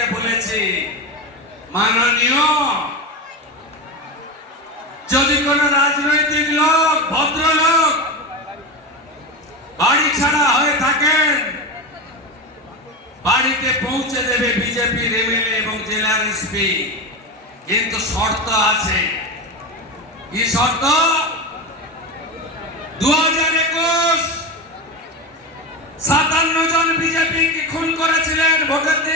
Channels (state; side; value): normal; both; correlation 0.20